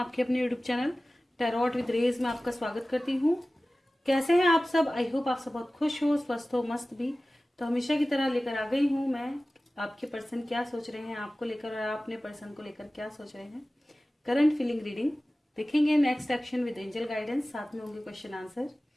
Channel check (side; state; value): both; normal; correlation 0.97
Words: अपने यूट्यूब चैनल टैरोट विद रेज में आपका स्वागत करती हूँ। कैसे हैं आप सब? आई होप आप सब बहुत खुश हो, स्वस्थ हो, मस्त भी। तो हमेशा की तरह लेकर आ गई हूँ मैं आपके पर्सन क्या सोच रहे हैं आपको लेकर और आप अपने पर्सन को लेकर क्या सोच रहे हैं। करंट फीलिंग रीडिंग देखेंगे, next action with angel guidance, साथ में होंगे क्वेश्चन आंसर।